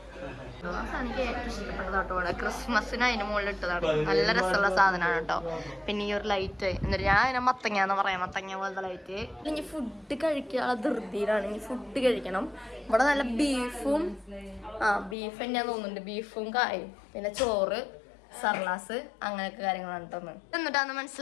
എനിക്ക് ഏറ്റവും ഇഷ്ടപ്പെട്ടതാട്ടോ. ക്രിസ്മസിന് അതിന്റെ മുകളിൽ ഇട്ടതാണ്. നല്ല രസമുള്ള സാധനമാണ് കേട്ടോ. പിന്നെ ഈ ഒരു ലൈറ്റ്, എന്നിട്ട് ഞാൻ അതിനെ മത്തങ്ങാന്ന് പറയാം, മത്തങ്ങ പോലത്തെ ലൈറ്റ്. ഇനി ഫുഡ് കഴിക്കാനുള്ള ധൃതിയിലാണ്. ഇനി ഫുഡ് കഴിക്കണം. ഇവിടെ നല്ല ബീഫും, ബീഫ് തന്നെയാന്ന് തോന്നുന്നുണ്ട്. ബീഫും കായും, പിന്നെ ചോറ്, സർലാസ്, അങ്ങനെയൊക്കെ കാര്യങ്ങളാണ് കേട്ടോ. എന്നിട്ടാന്ന്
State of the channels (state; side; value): drops out; right; at 15.2 s